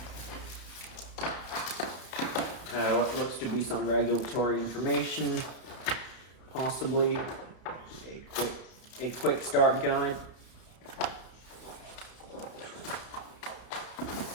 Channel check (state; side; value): late; right; 32 ms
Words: What looks to be some regulatory information, possibly a quick start guide.